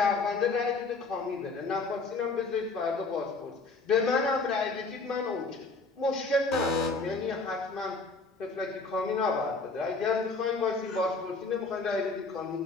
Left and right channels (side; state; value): right; quieter; 3.9 dB